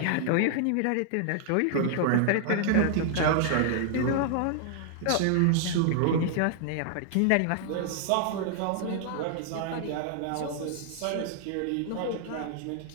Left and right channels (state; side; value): different; both; correlation 0.00